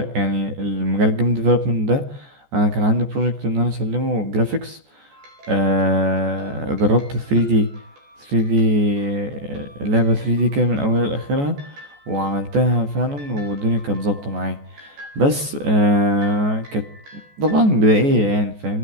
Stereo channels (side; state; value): left; late; 14 ms